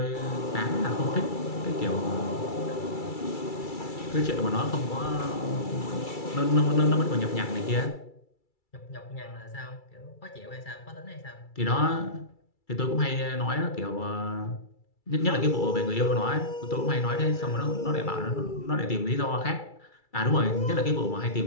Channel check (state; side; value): late; right; 2.3 ms